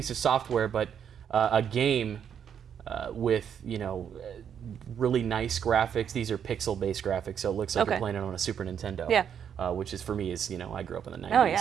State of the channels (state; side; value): quieter; left; 8.3 dB